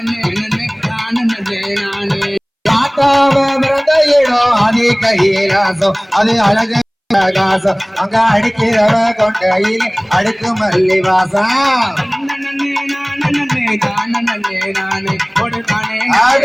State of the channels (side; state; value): both; identical; correlation 1.00